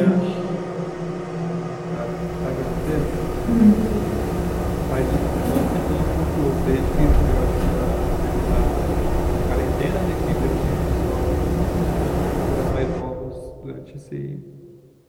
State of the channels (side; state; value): both; identical; correlation 1.00